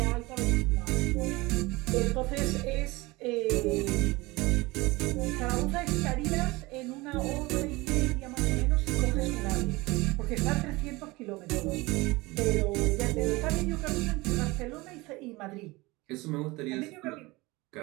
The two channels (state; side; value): quieter; left; 22.3 dB